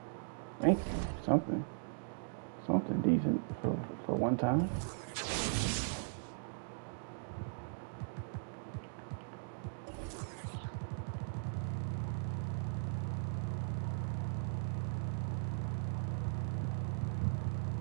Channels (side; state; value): left; silent; digital silence